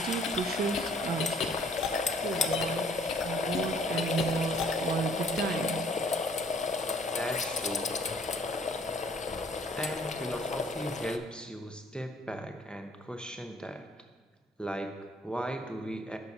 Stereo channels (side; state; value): both; normal; correlation 0.59